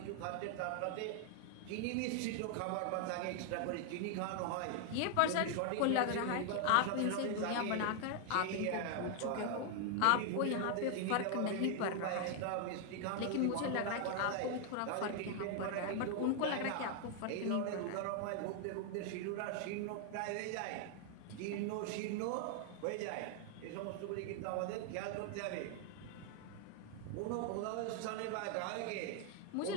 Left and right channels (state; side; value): different; both; correlation 0.00